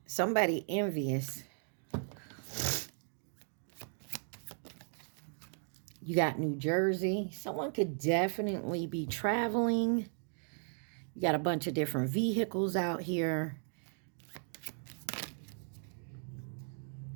Somebody envious. You got New Jersey. Someone could definitely be traveling. You got a bunch of different vehicles out here.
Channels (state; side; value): silent; left; 53 dB below the other